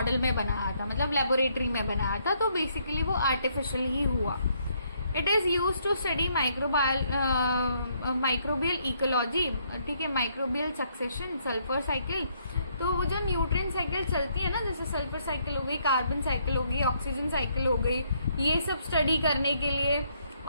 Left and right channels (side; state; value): both; inverted; correlation -0.71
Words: में बनाया था, मतलब लेबोरेटरी में बनाया था। तो बेसिकली वो आर्टिफिशियल ही हुआ। It is use to study microbial ecology, ठीक है, माइक्रोबियल सक्सेशन, सल्फर साइकिल। तो वो जो न्यूट्रिएंट साइकिल चलती है ना, जैसे सल्फर साइकिल हो गई, कार्बन साइकिल हो गई, ऑक्सीजन साइकिल हो गई, ये सब स्टडी करने के लिए।